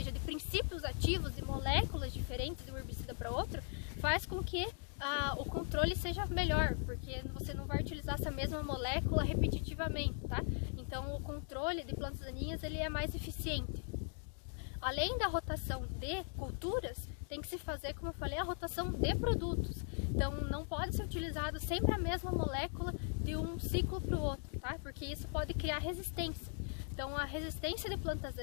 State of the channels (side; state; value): right; silent; 51 dB below the other